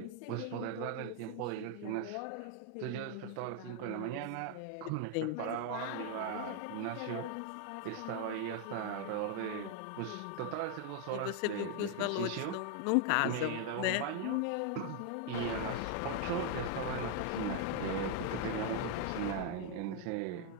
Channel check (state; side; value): different; both; correlation 0.00